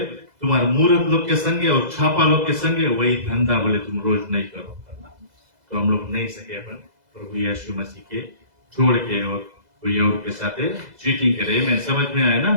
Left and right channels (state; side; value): late; left; 2.0 ms